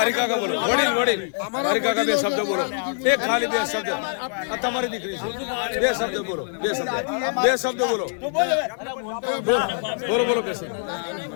હરિકાકા બોલો. વડીલ હરિકાકા બે શબ્દ બોલો. એક ખાલી બે શબ્દ. આ તમારી દીકરી છે. બે શબ્દ બોલો. બે શબ્દ બોલો. બોલો બે શબ્દ.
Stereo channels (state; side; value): silent; right; 57 dB below the other